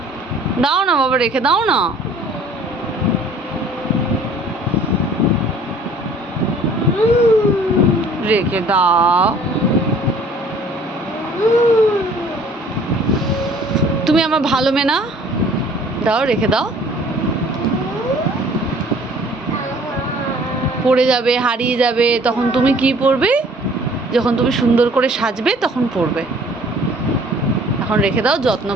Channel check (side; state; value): both; normal; correlation 0.53